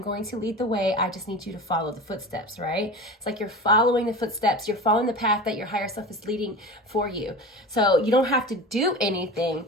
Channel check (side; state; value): both; normal; correlation 0.32